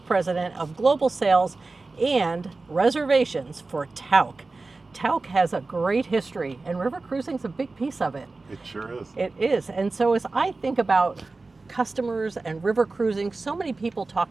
of Global Sales and Reservations for Tauck. Tauck has a great history, and river cruising is a big piece of it. It sure is. It is. And so as I think about customers and river cruising, so many people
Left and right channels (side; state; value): left; quieter; 3.6 dB